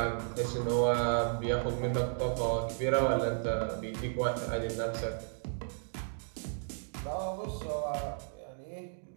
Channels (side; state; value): left; silent; digital silence